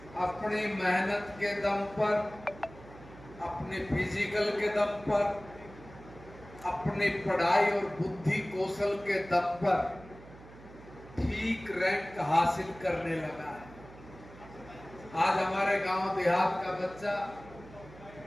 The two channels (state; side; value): noise; right; hum, 19 dB below the sound